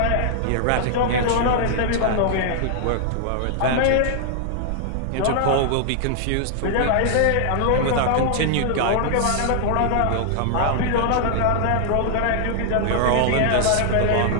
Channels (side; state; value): both; different; correlation 0.00